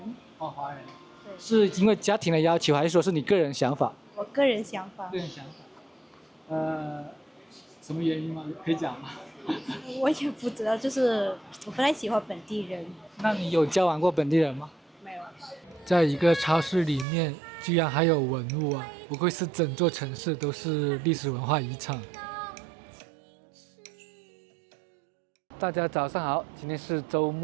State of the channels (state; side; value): drops out; left; at 17.1 s